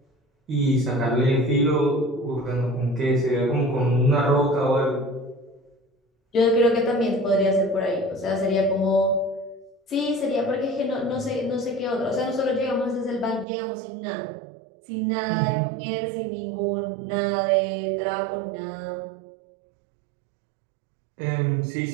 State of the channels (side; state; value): left; drops out; at 13.5 s